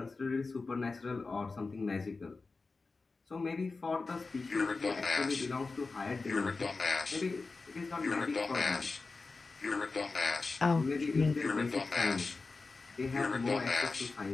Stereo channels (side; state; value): right; quieter; 3.9 dB